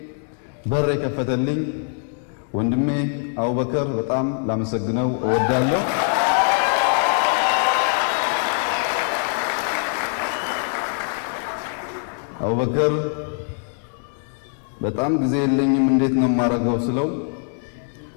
በር የከፈተልኝ ወንድሜ አቡበከር በጣም ላመሰግነው እወዳለሁ። አቡበከር በጣም ጊዜ የለኝም እንዴት ነው የማደርገው ስለው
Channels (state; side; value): silent; right; 56 dB below the other